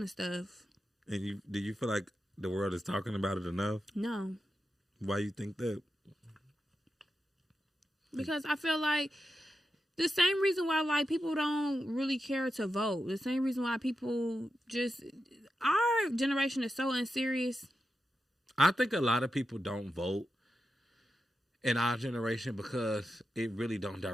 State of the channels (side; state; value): both; normal; correlation 0.88